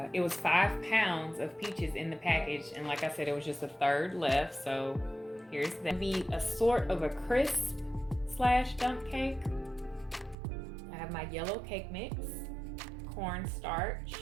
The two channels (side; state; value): left; drops out; at 10.4 s